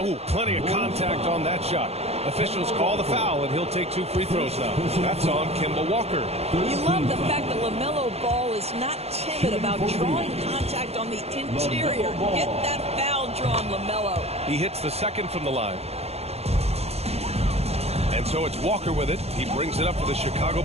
Ooh, plenty of contact on that shot. Officials call the foul, and he'll take 2 free throws now. That's on Kemba Walker. You love the fact that LaMelo Ball is not timid about drawing contact on the interior. Get that foul drawn, LaMelo. He hits the second from the line. And so it's Walker with it. He brings it up for the Chicago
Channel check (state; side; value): late; left; 0.30 ms